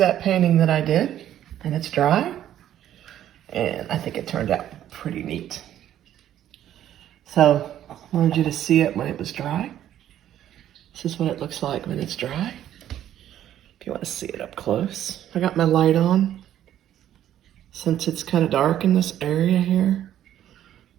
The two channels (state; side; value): quieter; left; 11.5 dB